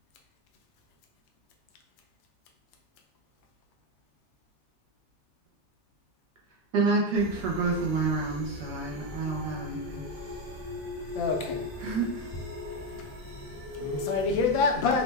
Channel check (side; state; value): both; normal; correlation 0.09